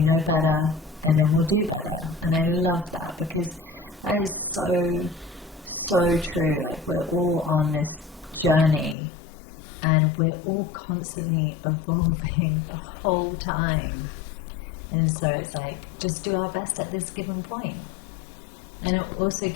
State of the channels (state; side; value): drops out; right; at 9.0 s